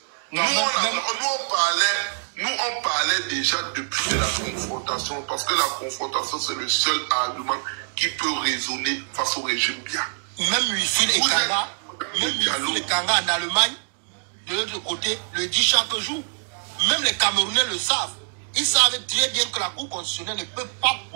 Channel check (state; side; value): silent; left; digital silence